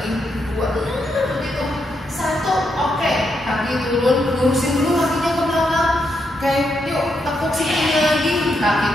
2, begitu, 1, oke, kaki turun, lurusin dulu kakinya ke belakang, oke, yuk tepuk sikunya lagi, kaki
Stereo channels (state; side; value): normal; both; correlation 0.80